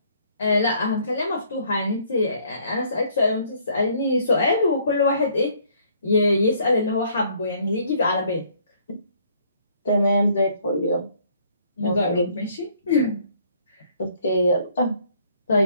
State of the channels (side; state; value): both; inverted; correlation -0.63